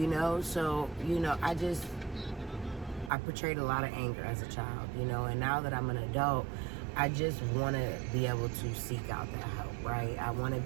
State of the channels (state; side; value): drops out; left; at 3.1 s